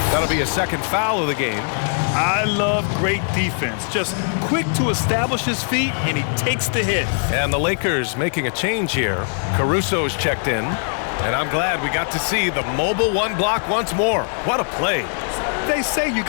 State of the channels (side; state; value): right; silent; digital silence